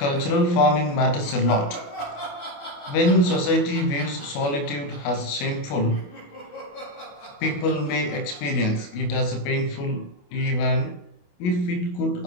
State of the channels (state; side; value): late; right; 28 ms